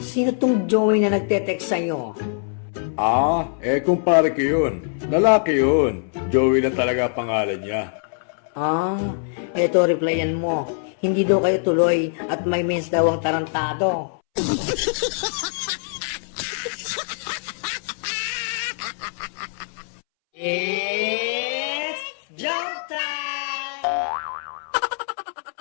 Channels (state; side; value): silent; right; 63 dB below the other